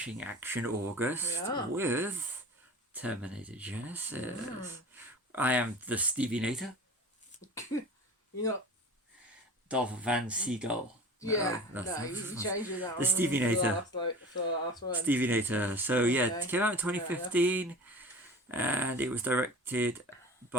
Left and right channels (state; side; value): normal; both; correlation 0.37